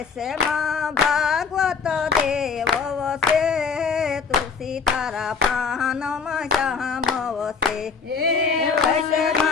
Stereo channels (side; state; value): right; quieter; 5.6 dB